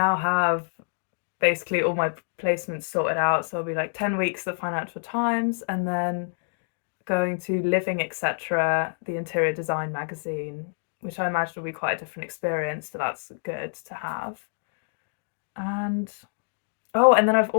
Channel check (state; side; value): silent; right; digital silence